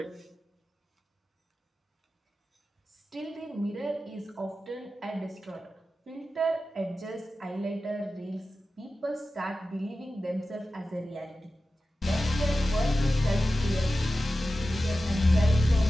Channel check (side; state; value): both; normal; correlation 0.94